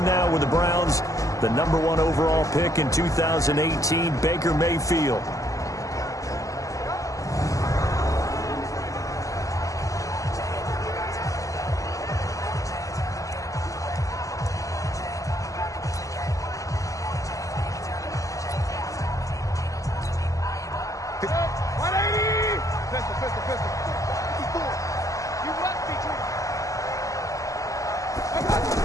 now with the Browns. The number 1 overall pick in 2018, Baker Mayfield.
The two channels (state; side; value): late; right; 0.16 ms